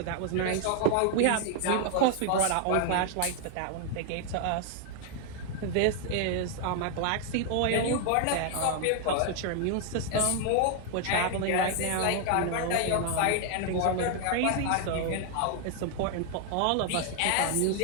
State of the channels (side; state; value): both; different; correlation 0.00